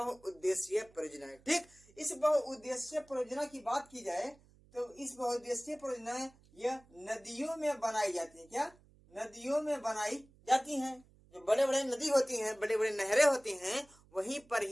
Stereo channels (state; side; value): noise; right; hum, 28 dB below the sound